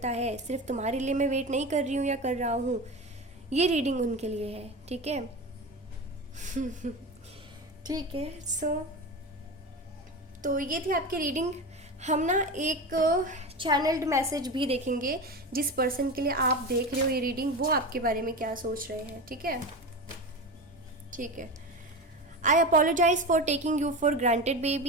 है, सिर्फ तुम्हारे लिए मैं वेट नहीं कर रही हूँ या कर रहा हूँ, ये रीडिंग उनके लिए है। ठीक है ठीक है, तो ये थी आपकी रीडिंग। हम ना एक चैनल्ड मैसेज भी देखेंगे, जिस पर्सन के लिए आप देख रहे हो ये रीडिंग, वो आपके बारे में क्या सोच रहे हैं। ठीक है, ठीक है। I apologize for taking you for granted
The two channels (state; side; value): normal; both; correlation 0.25